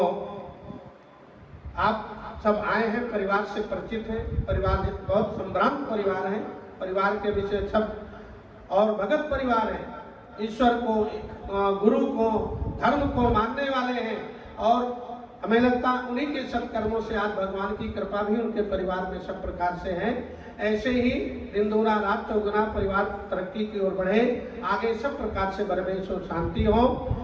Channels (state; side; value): identical; both; correlation 1.00